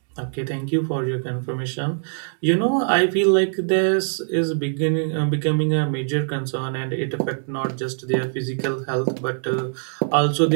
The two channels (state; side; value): silent; left; digital silence